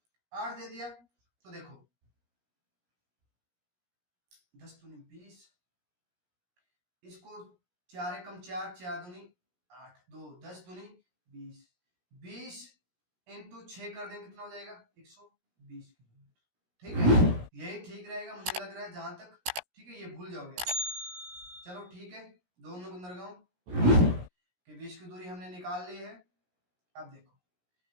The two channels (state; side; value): late; left; 17 ms